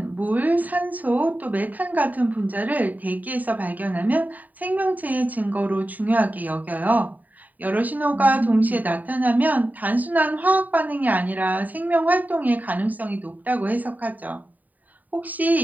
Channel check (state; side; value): late; left; 0.080 ms